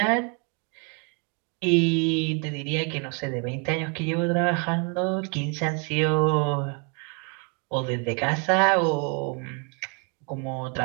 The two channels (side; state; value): left; quieter; 34.4 dB